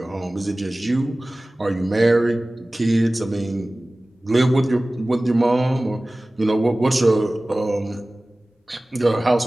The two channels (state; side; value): normal; both; correlation 0.98